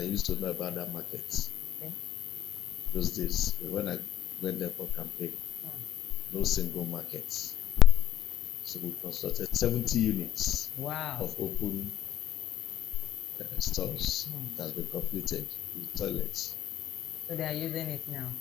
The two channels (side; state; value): right; quieter; 11.8 dB